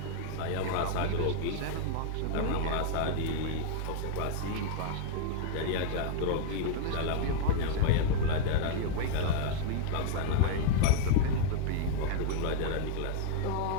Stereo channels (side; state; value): both; different; correlation 0.00